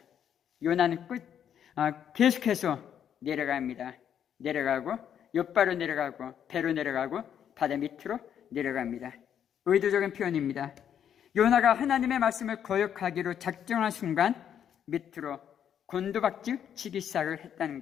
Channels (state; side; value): quieter; right; 9.1 dB